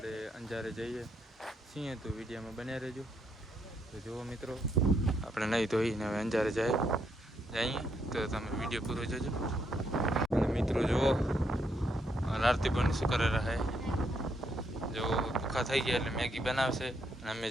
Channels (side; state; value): both; normal; correlation 0.76